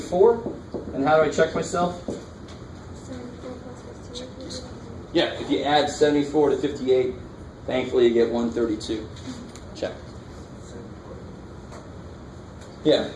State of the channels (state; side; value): identical; both; correlation 1.00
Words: And how do I check myself? Yeah, if you add 74 to 58, thankfully you get 132. Check. Yeah,